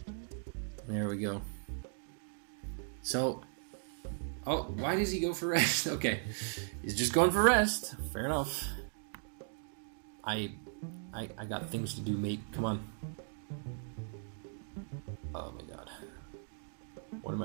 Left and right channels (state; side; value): silent; left; digital silence